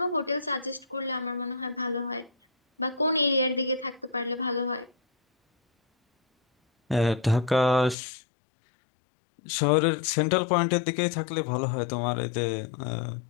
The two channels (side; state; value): right; drops out; at 8.0 s